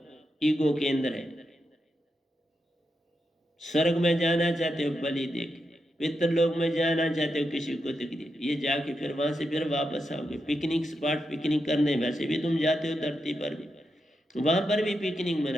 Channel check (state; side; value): normal; both; correlation 0.86